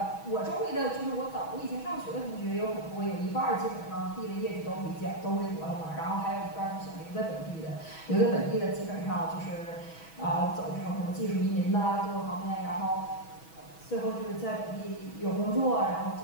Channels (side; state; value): right; late; 6.2 ms